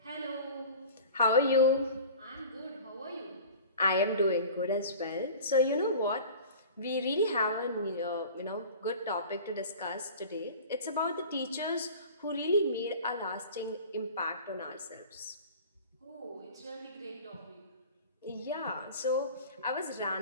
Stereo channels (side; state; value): both; inverted; correlation -0.40